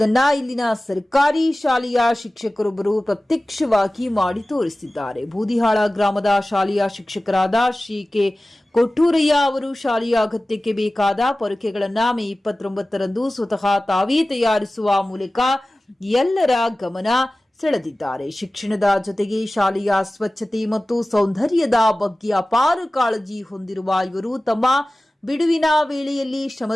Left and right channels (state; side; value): normal; both; correlation 0.97